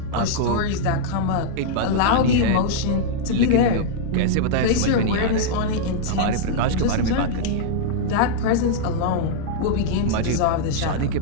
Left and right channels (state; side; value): different; both; correlation -0.02